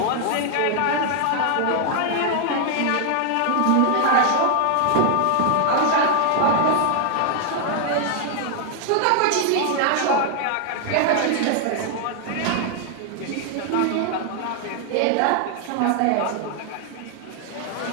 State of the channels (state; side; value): different; both; correlation 0.00